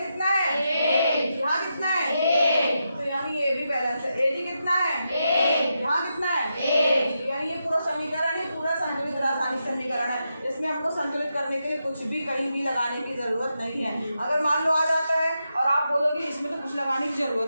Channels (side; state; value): both; inverted; correlation -0.86